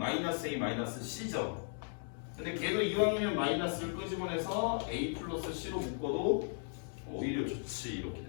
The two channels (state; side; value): silent; right; 53 dB below the other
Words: A 마이너스 C죠. 근데 걔도 이왕이면 마이너스를 끄집어내서 A 플러스 C로 묶어도 오히려 좋지. 이렇게